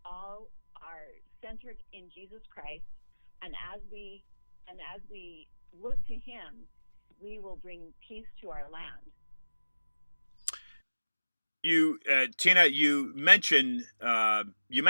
all are centered in Jesus Christ. And as we look to Him, we will bring peace to our land. You, Teena, you mentioned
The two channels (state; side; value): inverted; both; correlation -1.00